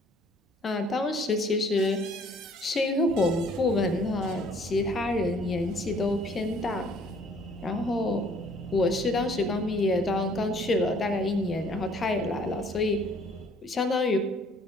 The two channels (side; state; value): both; normal; correlation 0.58